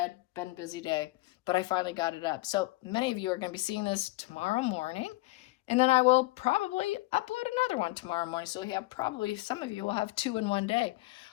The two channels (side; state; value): right; quieter; 21.6 dB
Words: Been a busy day, but I finally got it up. So many of you are going to be seeing this tomorrow morning. And then I will probably upload another one tomorrow morning. So we have probably, some of you will have 2 in one day.